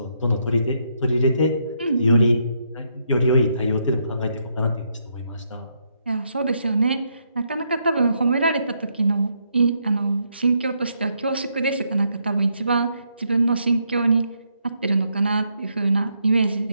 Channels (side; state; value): both; inverted; correlation -0.76